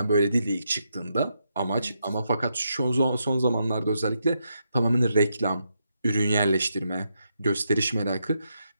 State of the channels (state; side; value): inverted; both; correlation -0.81